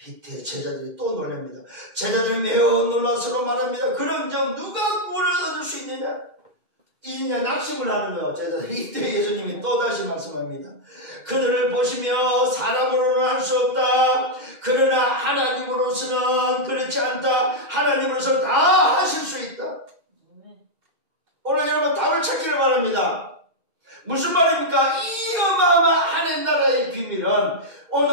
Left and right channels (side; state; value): left; late; 6.3 ms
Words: 이때 제자들이 또 놀랍니다. 제자들이 매우 놀라서로 말합니다. 그럼 누가 구원을 얻을 수 있느냐? 이냐 낙심을 하는 거예요. 제자들이. 이때 예수님이 또다시 말씀합니다. 그들을 보시며 사람으로는 할 수 없다. 그러나 하나님으로서는 그렇지 않다. 하나님으로서는 다 하실 수 있다. 오늘 여러분 답을 찾기를 바랍니다. 무슨 말입니까? 이 어마어마한 하나님 나라의 비밀은,